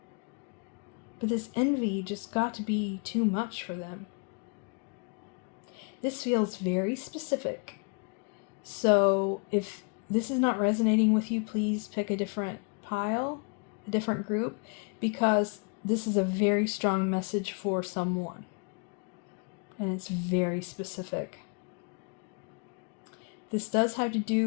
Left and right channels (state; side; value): quieter; right; 35.8 dB